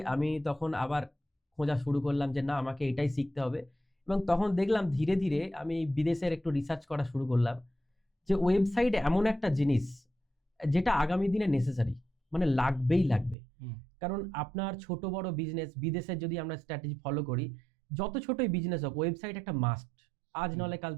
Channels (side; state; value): left; drops out; at 13.4 s